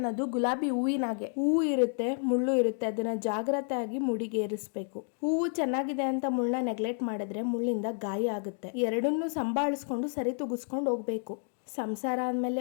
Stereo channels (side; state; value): right; silent; 58 dB below the other